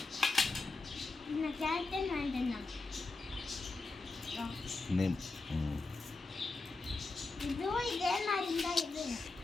இந்த கேரக்டர் வாங்கிட்டேன். இதுவும் இதே மாதிரி தான். இது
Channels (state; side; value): quieter; right; 3.5 dB